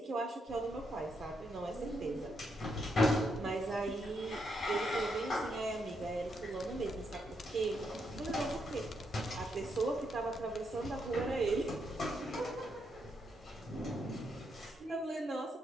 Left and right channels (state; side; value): normal; both; correlation 0.79